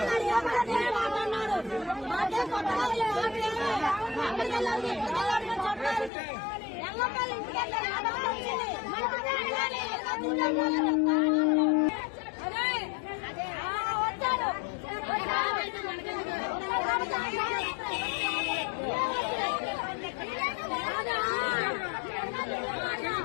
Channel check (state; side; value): drops out; right; at 6.1 s